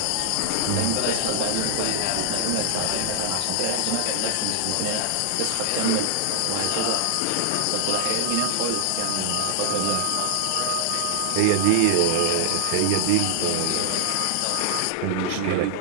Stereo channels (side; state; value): both; different; correlation -0.01